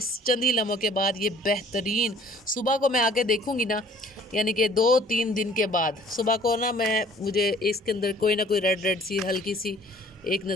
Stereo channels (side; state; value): both; normal; correlation 0.54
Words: चंद ही लम्हों के बाद ये बेहतरीन। सुबह को मैं आके देखूँगी ना, यानी कि 2-3 दिन के बाद सुबह को ना, मुझे इसके अंदर कोई ना कोई रेड सी हल्की सी एक